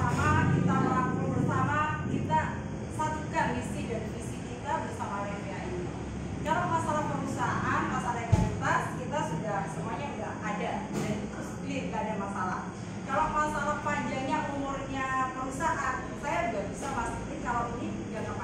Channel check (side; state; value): both; identical; correlation 1.00